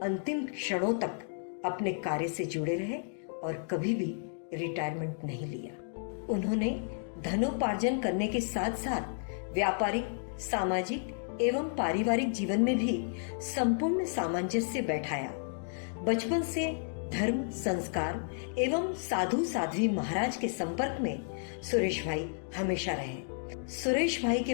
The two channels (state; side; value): silent; right; digital silence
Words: अंतिम क्षणों तक अपने कार्य से जुड़े रहे और कभी भी रिटायरमेंट नहीं लिया। उन्होंने धनोपार्जन करने के साथ साथ व्यापारिक, सामाजिक एवं पारिवारिक जीवन में भी संपूर्ण सामंजस्य बैठाया। बचपन से धर्म, संस्कार एवं साधु साध्वी महाराज के संपर्क में सुरेश भाई हमेशा रहे। सुरेश भाई